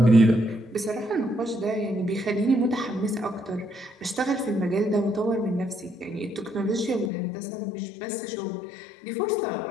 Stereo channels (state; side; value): drops out; right; at 7.1 s